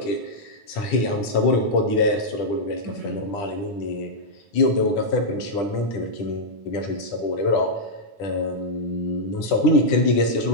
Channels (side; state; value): right; late; 10 ms